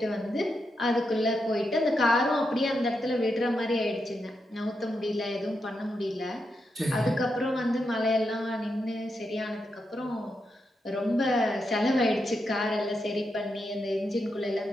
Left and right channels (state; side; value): normal; both; correlation 0.85